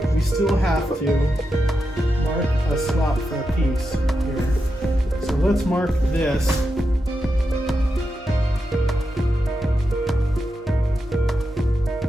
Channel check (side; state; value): both; normal; correlation 0.87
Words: we still have to mark a slot for a piece here. So let's mark this.